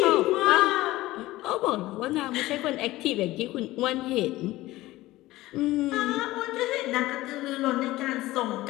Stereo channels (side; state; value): right; quieter; 17.5 dB